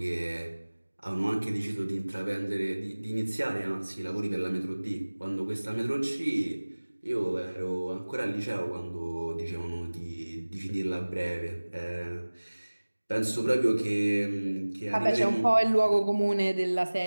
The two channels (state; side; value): inverted; both; correlation -1.00